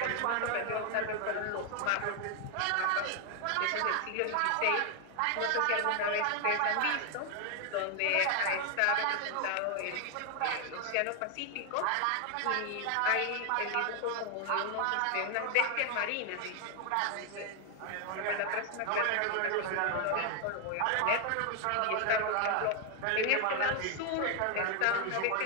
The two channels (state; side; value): different; both; correlation 0.00